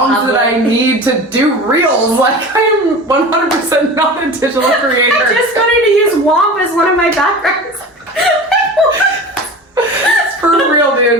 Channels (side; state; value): both; normal; correlation 0.34